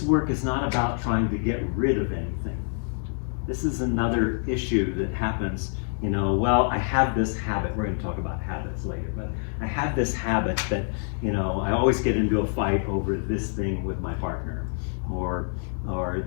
work is not about trying to get rid of anything. This is another issue that happens, well, I have this habit. We're going to talk about habits later, but I have this habit that, I always get into a fight over this thing with my partner, or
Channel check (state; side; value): silent; right; 61 dB below the other